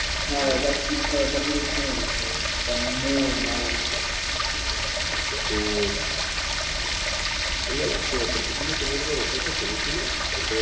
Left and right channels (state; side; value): identical; both; correlation 1.00